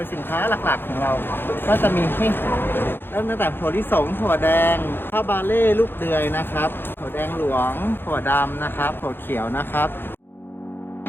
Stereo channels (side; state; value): right; late; 0.10 ms